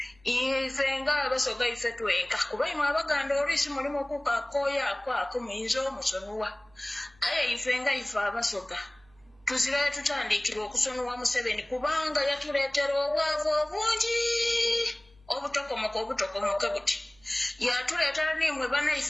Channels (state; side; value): noise; right; hum, 30 dB below the sound